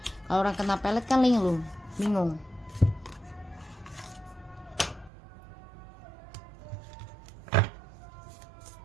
Kalau orang kena pelet kan linglung, bingung.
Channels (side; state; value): left; drops out; at 5.1 s